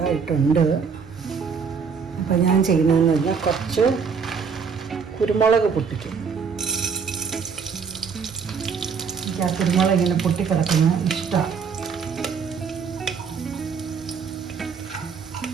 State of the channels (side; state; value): left; quieter; 6.0 dB